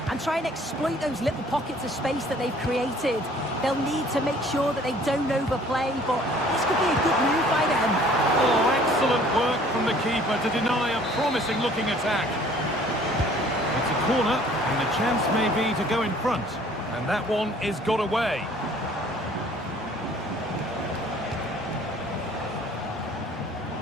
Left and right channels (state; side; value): normal; both; correlation 0.55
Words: and try and exploit those little pockets of space that they've created. They'll need to make sure that they don't overplay, but this could be a good move by them. Oh, excellent work from the keeper to deny a promising-looking attack. It's a corner, and the chance may be to go in front. And that one is got away.